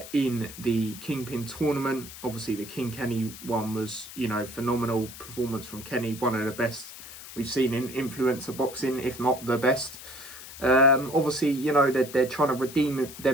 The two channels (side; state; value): left; noise; hiss, 14 dB below the sound